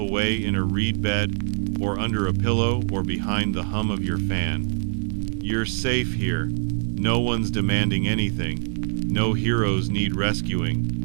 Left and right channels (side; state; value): left; silent; digital silence